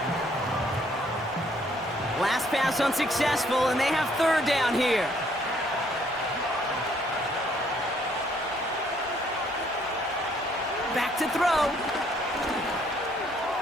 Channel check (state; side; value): normal; both; correlation 0.66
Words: Last pass unsuccessful, and they have 3rd down here. Back to throw.